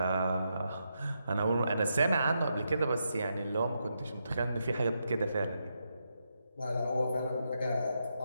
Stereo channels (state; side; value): inverted; both; correlation -0.83